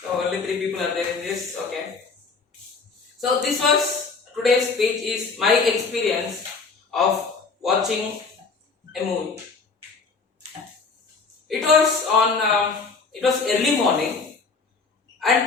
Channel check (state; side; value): quieter; right; 4.6 dB